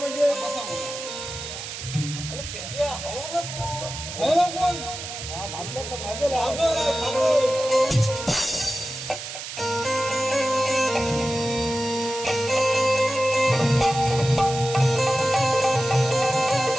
बसावं. कोण? भागल्याचं भागेल.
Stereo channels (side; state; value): right; noise; hiss, 9 dB below the sound